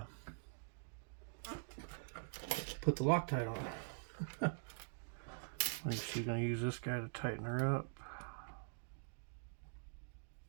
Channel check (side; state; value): left; silent; digital silence